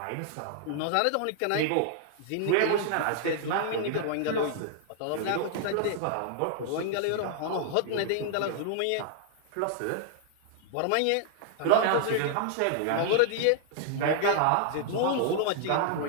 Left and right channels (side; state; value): both; different; correlation 0.00